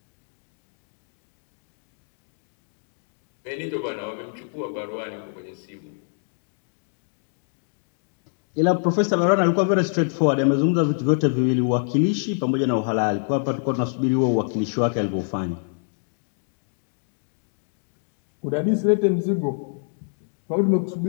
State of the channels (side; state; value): right; silent; digital silence